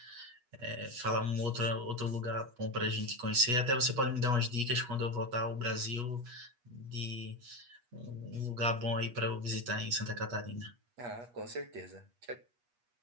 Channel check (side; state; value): left; late; 8.3 ms